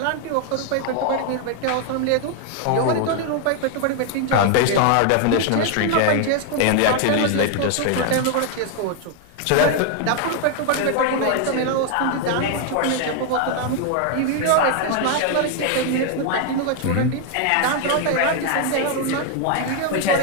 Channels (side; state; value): both; different; correlation 0.00